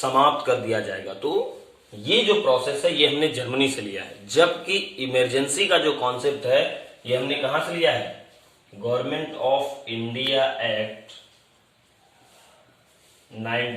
कर दिया जाएगा। तो ये जो प्रोसेस है ये हमने जर्मनी से लिया है, जबकि इमरजेंसी का जो कॉन्सेप्ट है ये हमने कहां से लिया है, गवर्नमेंट ऑफ इंडिया एक्ट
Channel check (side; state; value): both; identical; correlation 1.00